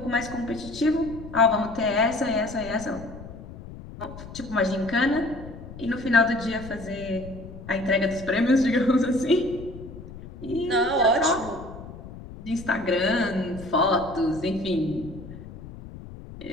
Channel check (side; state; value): left; noise; rumble, 14 dB below the sound